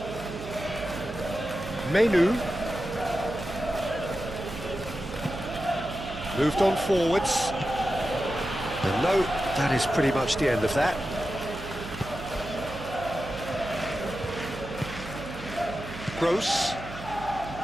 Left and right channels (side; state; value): right; noise; hum, 12 dB below the sound